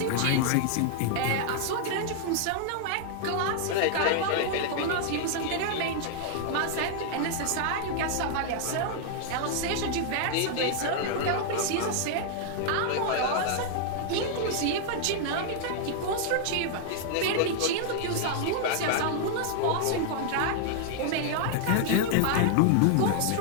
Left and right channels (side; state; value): both; different; correlation 0.00